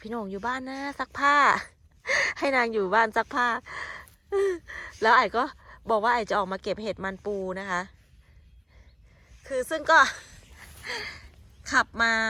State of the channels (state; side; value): identical; both; correlation 1.00